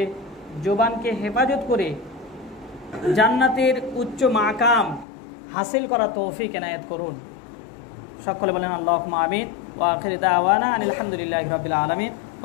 জবানকে হেফাজত করে জান্নাতের উচ্চ মাকাম হাসিল করা তৌফিক এনায়েত করুন। সকলে বলেন আল্লাহুম্মা আমিন। ওয়া আখিরু দাওয়ানা আনিল হামদুলিল্লাহি রাব্বিল আলামিন।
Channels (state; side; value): drops out; right; at 5.1 s